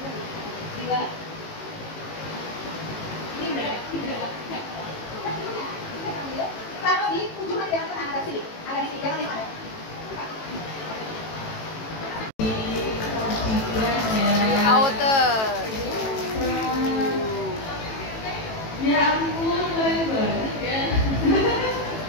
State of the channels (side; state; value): right; late; 18 ms